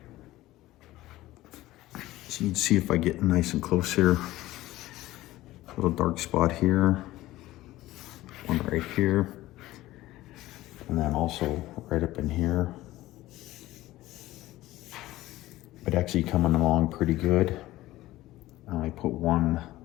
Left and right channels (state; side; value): quieter; right; 16.7 dB